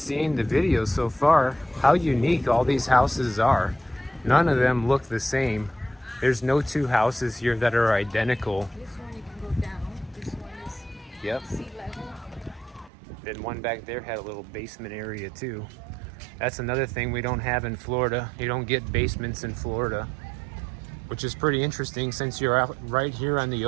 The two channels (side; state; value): left; drops out; at 12.9 s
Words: the videos so far how unique all these houses are. None of them look the same. There's no two houses here that are identical. This one you can go down. This one is Yep. sea level. Then one back there had a little basement area too. That's another thing we don't have in Florida. You don't get basements in Florida, which is pretty interesting since you're out right here on the